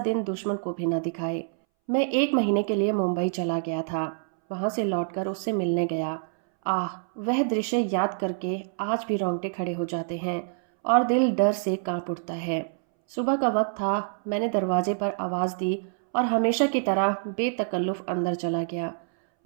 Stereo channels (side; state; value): left; silent; 61 dB below the other